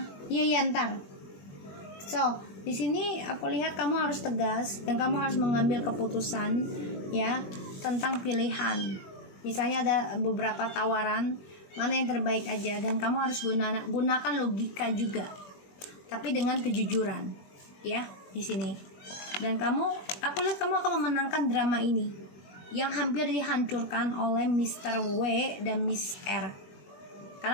iya ntar. So, di sini aku lihat kamu harus tegas dan kamu harus mengambil keputusan ya, tentang pilihan. Misalnya ada beberapa tawaran, mana yang terbaik aja, dan kamu harus gunakan logika juga, tapi dengan kejujuran ya di sini. Dan aku lihat kamu akan memenangkan drama ini yang hampir dihancurkan oleh Mr. W dan Miss R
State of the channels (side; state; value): right; late; 21 ms